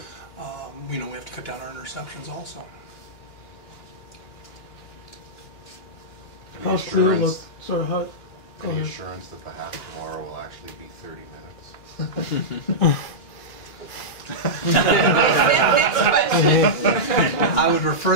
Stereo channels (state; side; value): late; right; 2.9 ms